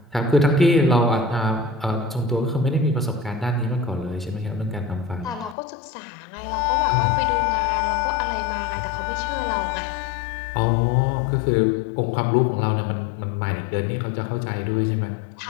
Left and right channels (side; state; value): right; drops out; at 5.6 s